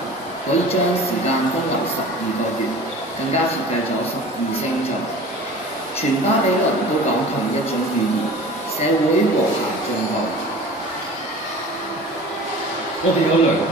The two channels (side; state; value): both; normal; correlation 0.40